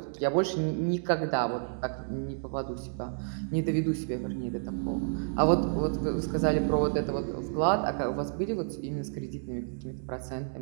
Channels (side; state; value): left; silent; digital silence